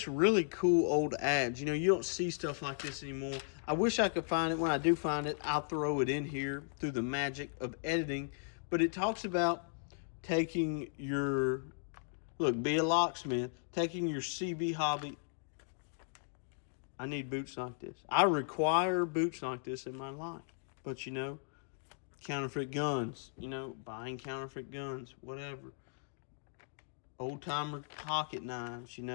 really cool old ads. You know, you don't see stuff like this anymore. I wish I could find it. When I do find it, I'll throw it in here through the magic of editing. But it talks about taking your, look, be a locksmith, taking your CB hobby. I need boots like this. I require boots like this in my life. But, you know, counterfeit guns, you know, buying counterfeit guns, whatever. Old-timer pocket knives, you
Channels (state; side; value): silent; right; digital silence